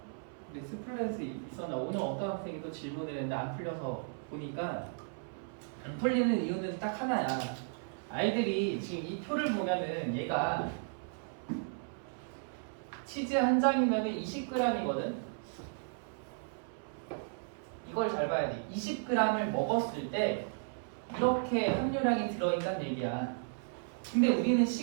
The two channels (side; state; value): left; silent; 55 dB below the other